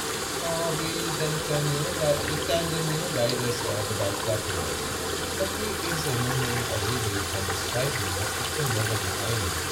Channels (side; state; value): both; identical; correlation 1.00